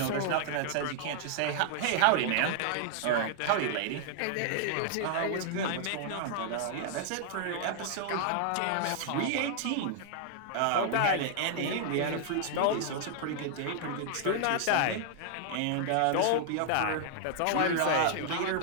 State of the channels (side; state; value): both; different; correlation 0.00